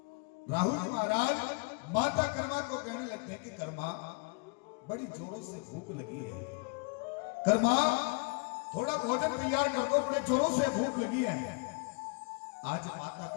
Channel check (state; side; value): quieter; right; 32.9 dB